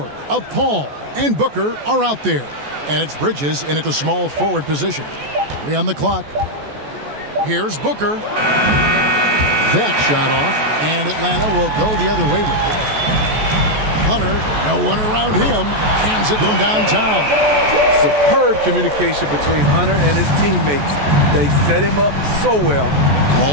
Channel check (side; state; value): left; late; 14 ms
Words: of Paul and Booker are out there. And it's Bridges in at the small forward position. 3 on the clock. Here's Booker. That shot off, and Atlanta will go the other way with it. Hunter, no one around him, hands it from downtown. Superb communication between Hunter and his teammates. They set him up so well.